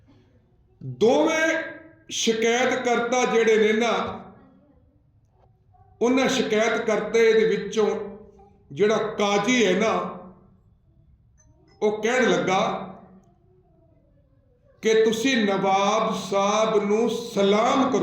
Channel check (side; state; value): both; identical; correlation 1.00